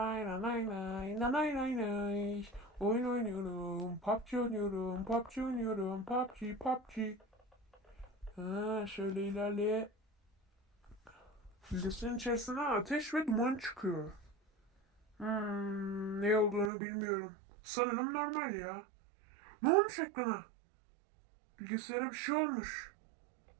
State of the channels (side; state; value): left; drops out; at 16.7 s